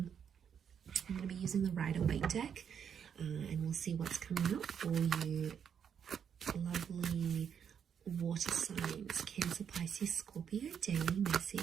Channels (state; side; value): quieter; left; 7.8 dB